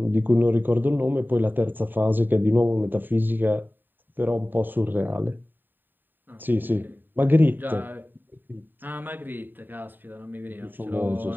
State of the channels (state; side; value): late; left; 0.092 ms